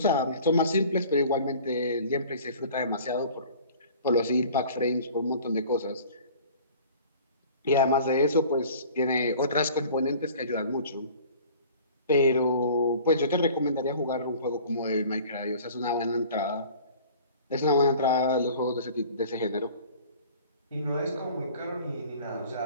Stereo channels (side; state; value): both; inverted; correlation -0.46